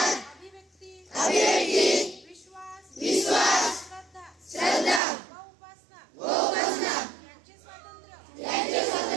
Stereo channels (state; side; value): drops out; left; at 5.0 s